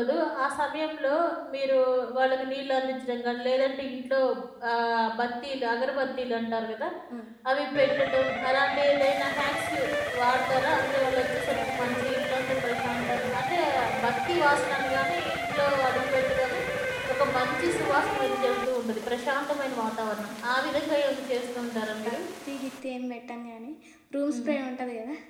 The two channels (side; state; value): both; identical; correlation 1.00